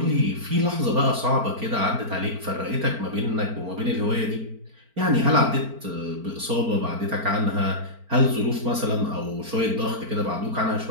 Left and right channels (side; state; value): left; late; 4.4 ms